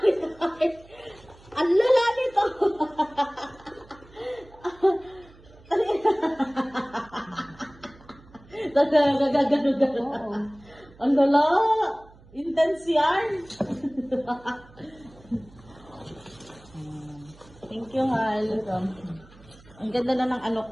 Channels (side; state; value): right; noise; hum, 24 dB below the sound